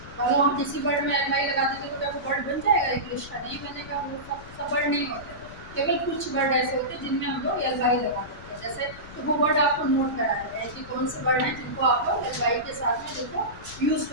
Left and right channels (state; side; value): noise; left; rumble, 17 dB below the sound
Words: और हम किसी वर्ड में एल वाई लगा देते तो क्या वो वर्ड बन जाएगा इंग्लिश का? नहीं बनेगा, वो सब वर्ड नहीं होते, केवल कुछ वर्ड ऐसे होते हैं जिनमें हम लोग एल वाई लगा देते हैं। जैसे तो वो वर्ड आपको नोट करा देते हैं कि कौन से वर्ड हैं जिनको आप लोग एल वाई के साथ में जिनको यूज़